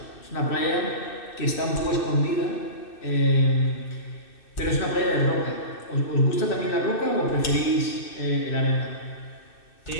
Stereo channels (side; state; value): right; late; 2.6 ms